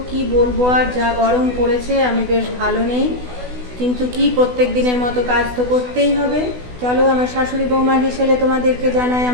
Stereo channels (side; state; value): left; late; 16 ms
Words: কি বলবো, আর যা গরম পড়েছে, আমি বেশ ভালো নেই, কিন্তু কি প্রত্যেক দিনের মতো কাজ তো করতেই হবে। চলো, আমার শাশুড়ি বৌমা হিসেবে তোমাদেরকে জানাই